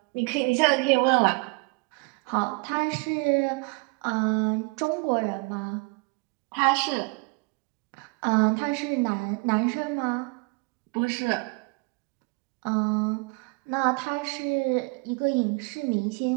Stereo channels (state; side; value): quieter; left; 30.0 dB